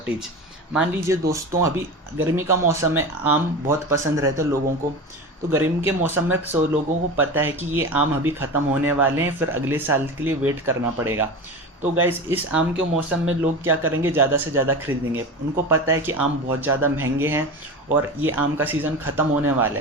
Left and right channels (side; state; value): both; normal; correlation 0.28